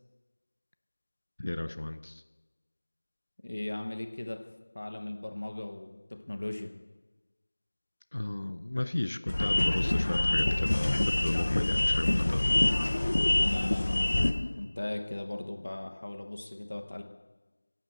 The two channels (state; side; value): inverted; both; correlation -1.00